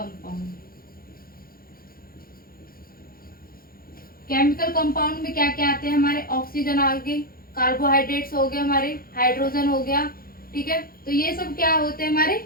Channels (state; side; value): late; right; 0.42 ms